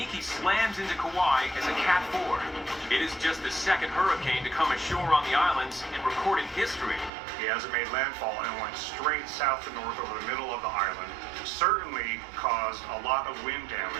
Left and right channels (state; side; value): drops out; left; at 7.1 s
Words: slams into Kauai as a Cat 4. It is just the second hurricane to come ashore on the islands in recorded history. He hasn't made landfall and went straight south to north over the middle of the island. Certainly caused a lot of wind